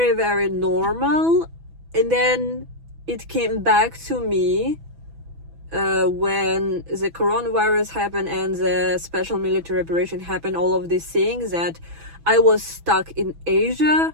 very normal, and then it came back to me when the coronavirus happened and the special military operation happened. All of these things, that I was stuck in Asia.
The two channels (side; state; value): left; late; 6.1 ms